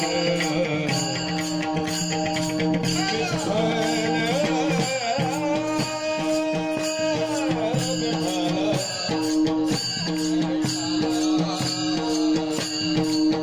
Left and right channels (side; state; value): both; identical; correlation 1.00